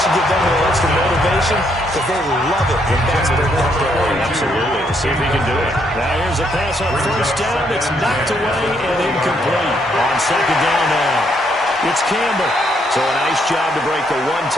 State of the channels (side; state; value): both; normal; correlation 0.73